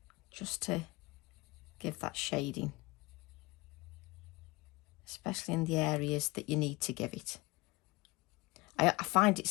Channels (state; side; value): quieter; right; 22.9 dB